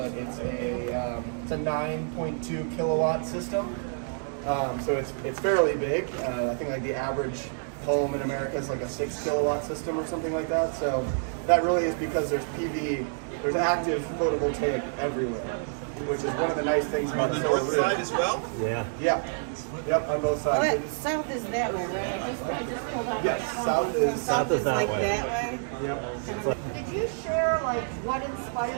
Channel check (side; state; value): left; silent; digital silence